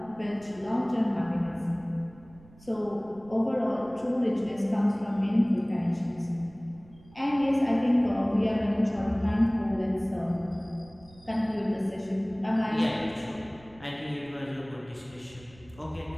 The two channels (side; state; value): right; noise; rumble, 24 dB below the sound